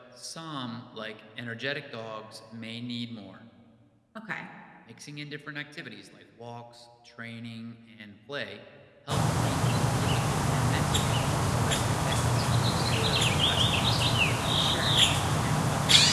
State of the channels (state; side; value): identical; both; correlation 1.00